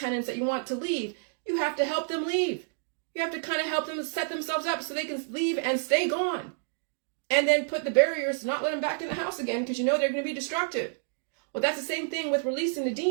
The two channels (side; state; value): left; silent; digital silence